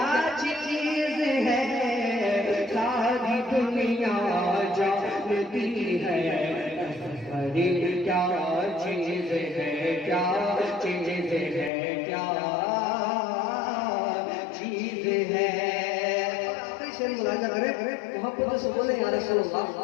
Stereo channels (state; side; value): drops out; right; at 11.7 s